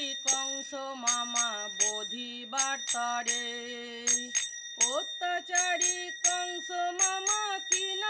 কংস মামা বোধিবার তরে। অত্যাচারী কংস মামা কি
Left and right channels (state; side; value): identical; both; correlation 1.00